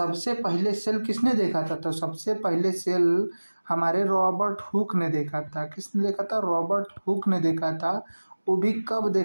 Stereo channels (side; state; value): both; inverted; correlation -1.00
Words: पहले सेल किसने देखा था, तो सबसे पहले सेल हमारे रॉबर्ट हुक ने देखा था। किसने देखा था, रॉबर्ट हुक ने देखा था। वो भी कब